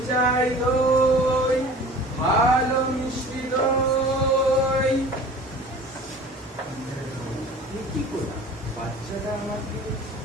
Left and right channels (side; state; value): both; normal; correlation 0.43